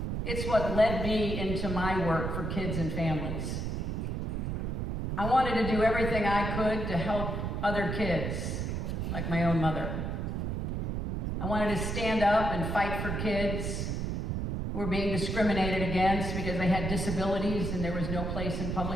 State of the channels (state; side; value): noise; right; rumble, 2 dB below the sound